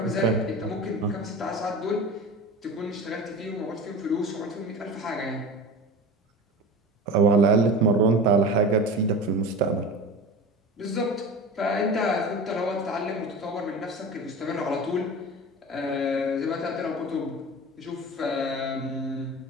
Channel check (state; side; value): normal; both; correlation 0.32